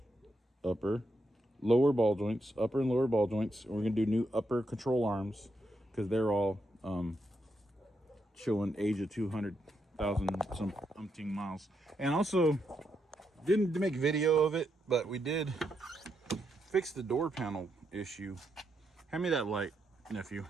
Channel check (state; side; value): normal; both; correlation 0.81